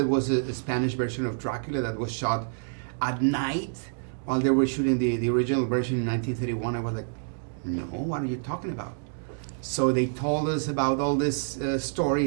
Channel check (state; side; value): silent; left; digital silence